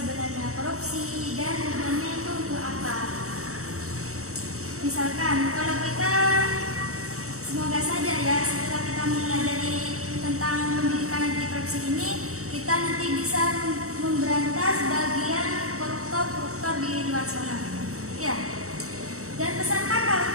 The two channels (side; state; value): left; late; 0.64 ms